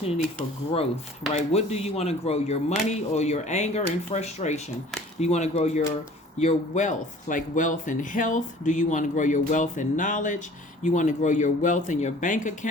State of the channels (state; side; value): normal; both; correlation 0.49